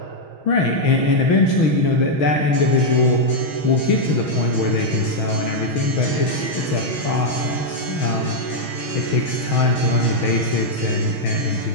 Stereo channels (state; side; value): late; right; 6.3 ms